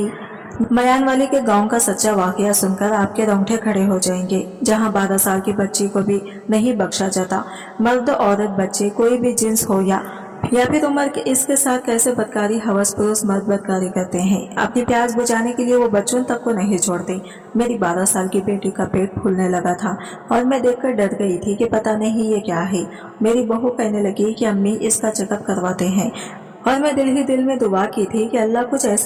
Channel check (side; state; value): both; identical; correlation 1.00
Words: मयानवाली के गांव का सच्चा वाकया सुनकर आपके रोंगटे खड़े हो जाएंगे, जहां 12 साल की बच्ची को भी नहीं बख्शा जाता। मर्द औरत बच्चे कोई भी जिन्स हो या फिर उम्र के इसके साथ कैसे बदकारी हवस पुरुष मर्द बदकारी करते हैं। अपनी प्यास बुझाने के लिए वो बच्चों तक को नहीं छोड़ते। मेरी 12 साल की बेटी का पेट फूलने लगा था और मैं देखकर डर गई थी कि पता नहीं ये क्या है। मेरी बहू कहने लगी कि अम्मी इसका चेकअप करवाते हैं और मैं दिल ही दिल में दुआ की थी कि अल्लाह कुछ